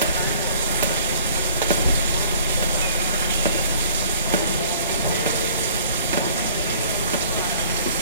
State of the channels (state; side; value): inverted; both; correlation -0.54